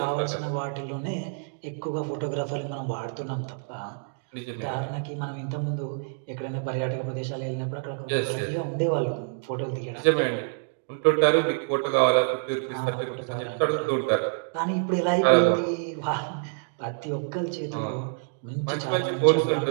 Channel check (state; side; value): silent; left; digital silence